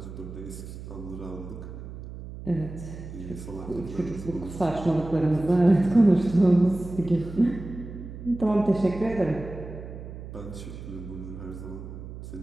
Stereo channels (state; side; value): noise; right; hum, 11 dB below the sound